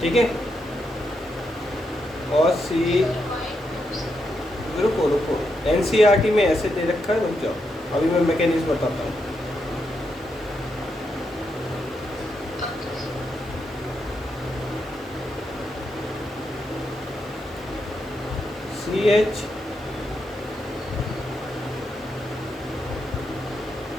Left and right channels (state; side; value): normal; both; correlation 0.82